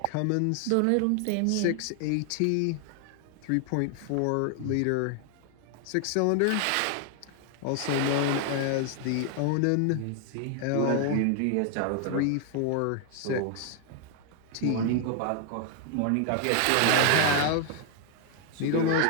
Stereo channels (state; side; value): different; both; correlation 0.00